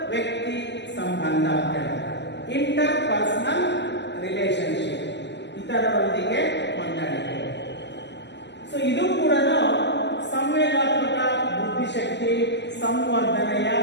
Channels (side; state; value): right; late; 0.51 ms